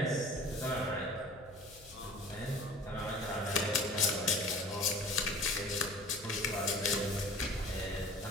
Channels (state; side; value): noise; left; hum, 23 dB below the sound